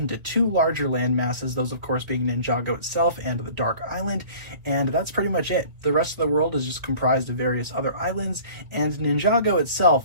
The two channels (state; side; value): late; left; 2.1 ms